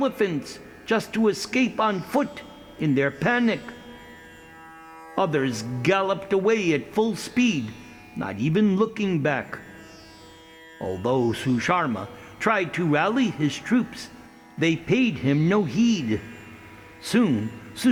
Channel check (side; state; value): both; identical; correlation 1.00